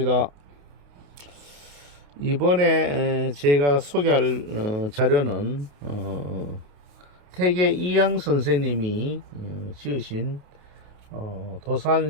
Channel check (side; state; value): left; late; 28 ms